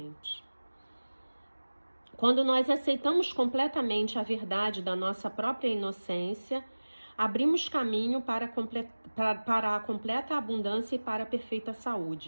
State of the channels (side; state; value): both; inverted; correlation -1.00